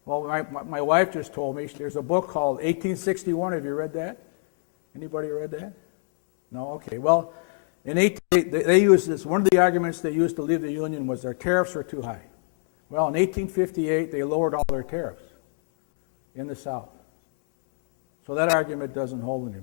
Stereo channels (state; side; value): silent; right; 61 dB below the other